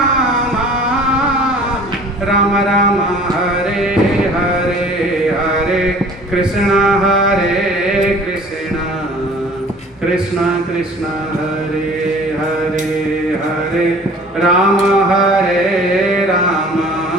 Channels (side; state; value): both; normal; correlation 0.48